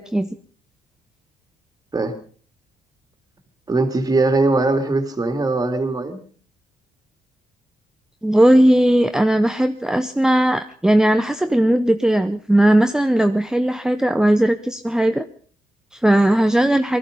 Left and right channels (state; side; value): normal; both; correlation 0.94